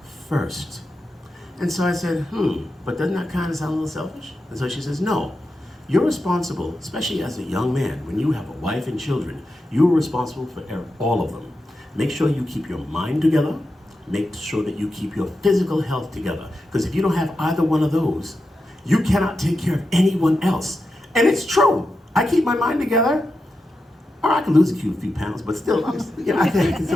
first. And so I said, but doesn't that kind of sound a little selfish? And so she says, no, you're responsible, especially as a young man, when you have a wife and children, you're responsible for all of them. Make sure you keep your mind together, make sure that you keep your physical health together. Because if you don't have either one of those, you cannot take care of anyone else. And it's true. I keep my mind together, or I can lose a few pounds, but still, I think I can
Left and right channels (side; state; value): both; normal; correlation 0.89